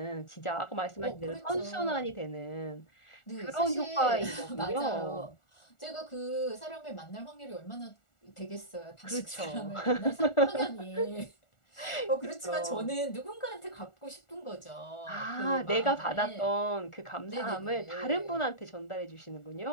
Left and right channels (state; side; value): late; right; 1.4 ms